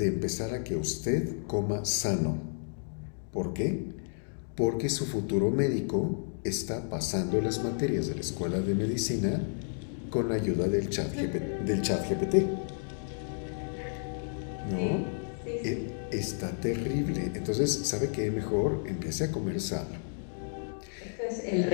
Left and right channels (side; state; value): right; silent; digital silence